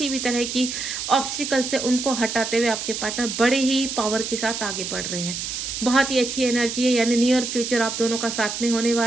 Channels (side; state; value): right; noise; hiss, 5 dB below the sound